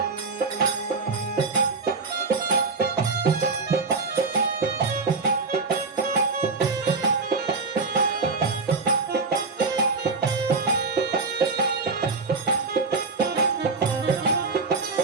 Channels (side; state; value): left; quieter; 4.2 dB